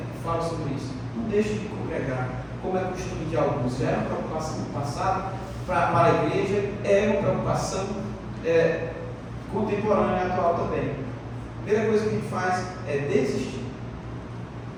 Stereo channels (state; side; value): identical; both; correlation 1.00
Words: que falam sobre isso. Não deixe de congregar, como é costume de alguns. Já era uma preocupação no passado para a igreja, é uma preocupação contemporânea e atual também. A primeira coisa que a gente faz é desistir.